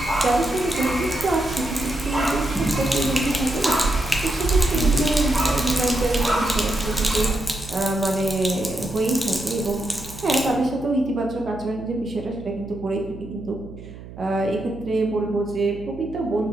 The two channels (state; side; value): noise; right; hum, 15 dB below the sound